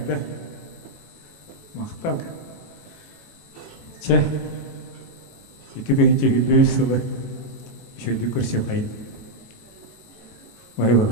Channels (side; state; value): right; late; 18 ms